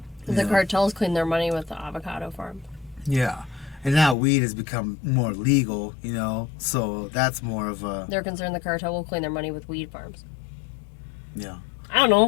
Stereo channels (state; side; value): drops out; right; at 4.2 s